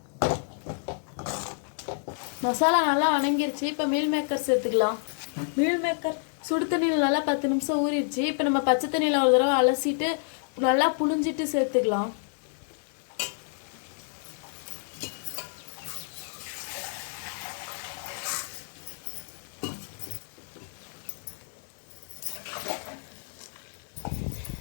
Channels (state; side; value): silent; right; digital silence